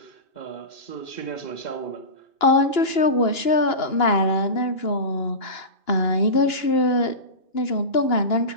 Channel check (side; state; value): right; late; 2.9 ms